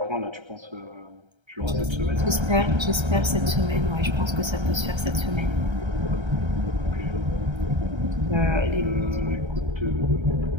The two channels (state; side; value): late; left; 1.3 ms